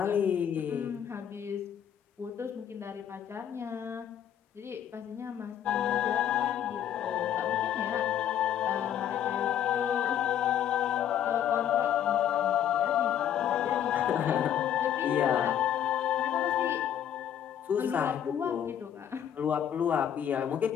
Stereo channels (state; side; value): quieter; right; 9.9 dB